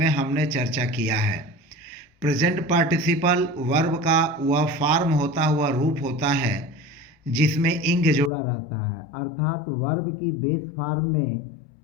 हमने चर्चा किया है। प्रेजेंट पार्टिसिपल वर्ब का वह फॉर्म होता हुआ रूप होता है जिसमें इंग जुड़ा रहता है, अर्थात वर्ब की बेस फॉर्म में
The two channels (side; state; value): right; drops out; at 8.3 s